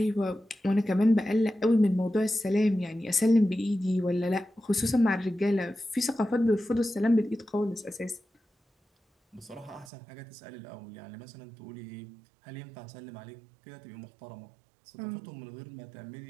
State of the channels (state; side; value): drops out; left; at 9.9 s